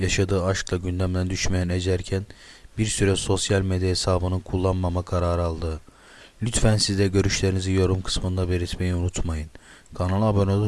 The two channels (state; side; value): identical; both; correlation 1.00